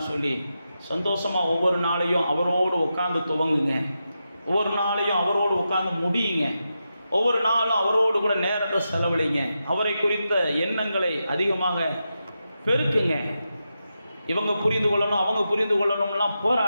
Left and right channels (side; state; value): both; inverted; correlation -0.88